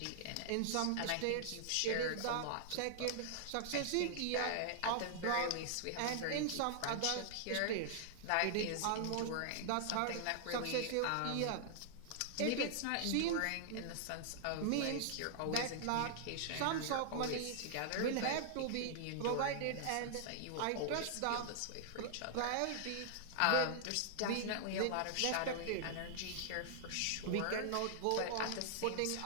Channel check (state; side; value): different; both; correlation -0.01